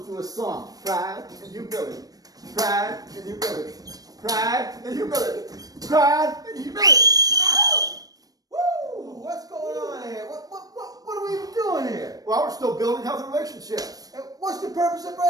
do a song. Pride and humility. Pride and humility. Pride and humility. Pride and humility. Woo! What's going on here? What are we even doing here? Well, we're still building healthy relationships. And what's the purpose of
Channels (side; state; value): left; late; 0.18 ms